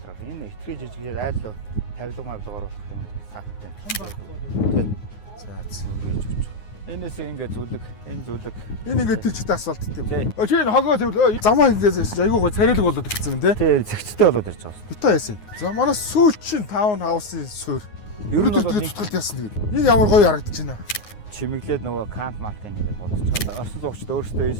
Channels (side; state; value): right; late; 9.6 ms